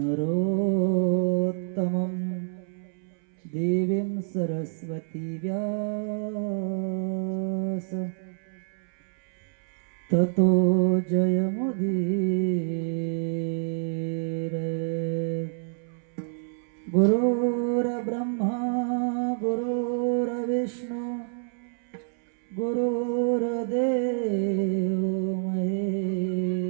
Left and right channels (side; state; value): left; silent; 60 dB below the other